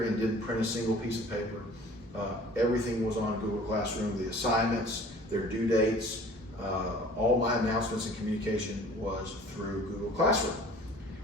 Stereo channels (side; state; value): both; normal; correlation 0.48